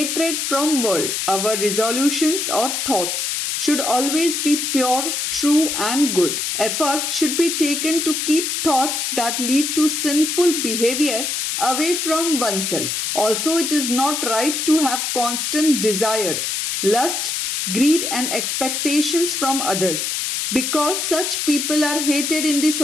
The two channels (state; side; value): noise; left; hiss, 1 dB below the sound